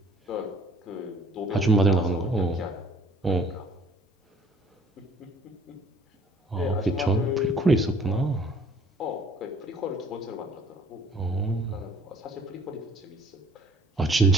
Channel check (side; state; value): both; normal; correlation 0.56